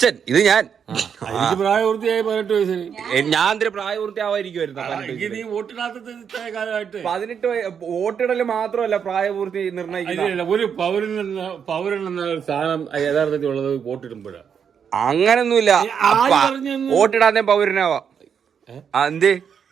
ഇത് ഞാൻ. എനിക്ക് പ്രായപൂർത്തിയായി 18 വയസ്സിൽ. ഞാൻ എന്തൊരു പ്രായപൂർത്തിയാവായിരിക്കുമായിരുന്നു. നീ വോട്ടിടാത്തത് ഇത്ര കാലമായിട്ട്. 18 വോട്ടിടല് മാത്രമല്ല പ്രായപൂർത്തി നിർണ്ണയിക്കില്ല. ഒരു പൗരൻ എന്ന സാധനം യഥാർത്ഥത്തിൽ ഉള്ളത് വോട്ടിടുമ്പോഴാണ്. അങ്ങനൊന്നുമില്ല. വോട്ടിടാതെ പൗരനാവാം. എന്തേ?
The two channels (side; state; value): left; quieter; 7.4 dB